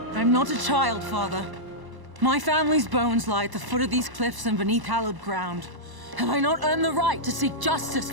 I'm not a child, Father. My family's bones lie at the foot of these cliffs and beneath hallowed ground. Have I not earned the right to seek justice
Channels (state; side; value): late; left; 1.0 ms